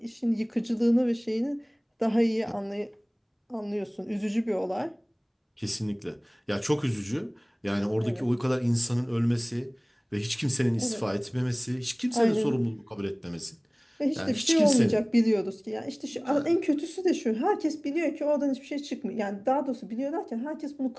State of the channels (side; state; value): both; identical; correlation 1.00